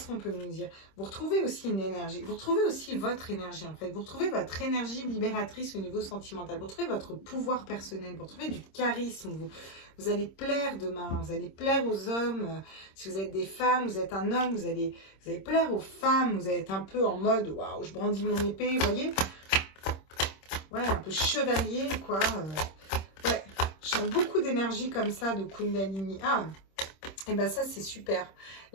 qu'on peut nous dire? Vous retrouvez aussi une énergie, vous retrouvez aussi votre énergie, en fait. Vous retrouvez votre énergie libératrice au niveau sentimental. Vous retrouvez votre pouvoir personnel, vous retrouvez du charisme. Vous allez plaire demain, vous allez plaire aux hommes. Si vous êtes des femmes, vous êtes un homme, vous allez plaire aux femmes. Vous allez être un peu en mode, waouh, je brandis mon épée, vous voyez? Ouais, un peu chevalier, quoi. Ouais, je sens beaucoup d'énergie comme ça, de Kundalini. Ah, et ben ça, c'est super.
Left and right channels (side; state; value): right; late; 26 ms